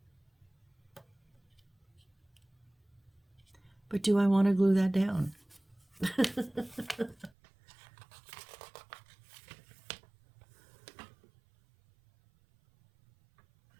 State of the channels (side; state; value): left; drops out; at 7.3 s